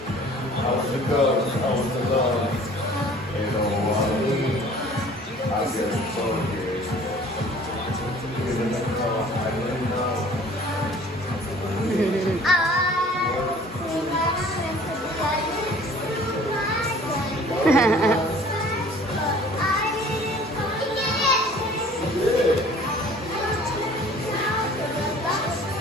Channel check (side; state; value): both; normal; correlation 0.50